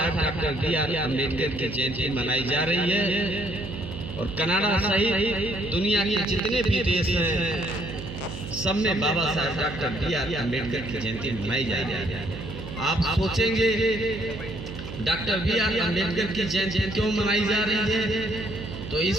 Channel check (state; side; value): noise; right; hum, 10 dB below the sound